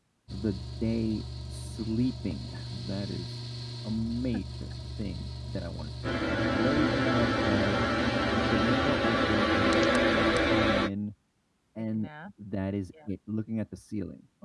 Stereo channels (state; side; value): identical; both; correlation 1.00